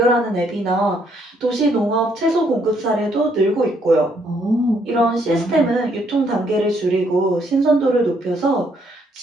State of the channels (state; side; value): normal; both; correlation 0.70